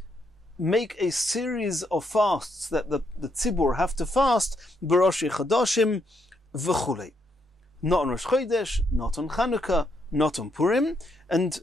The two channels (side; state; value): both; normal; correlation 0.76